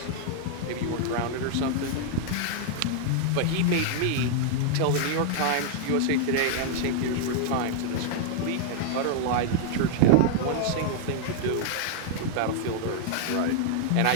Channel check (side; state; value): both; different; correlation -0.01